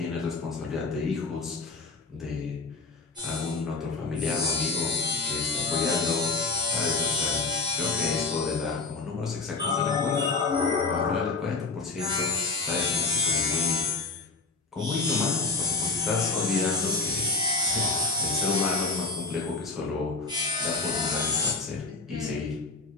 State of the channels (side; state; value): right; quieter; 3.9 dB